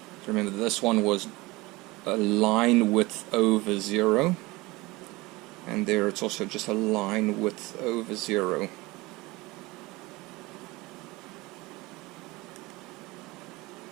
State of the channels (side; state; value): left; quieter; 21.9 dB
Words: So remember, this one was a line width over 0. And there it's also just a line width over 0.